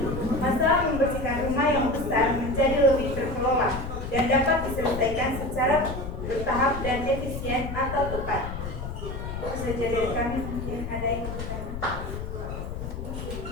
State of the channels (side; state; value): left; noise; rumble, 6 dB below the sound